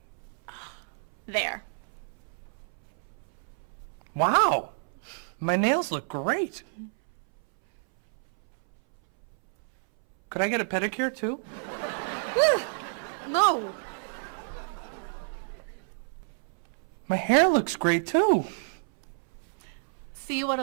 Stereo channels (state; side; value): silent; left; 58 dB below the other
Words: There. Wow! My nails look great. Could I get a pedicure too? No. My hair looks great too. See what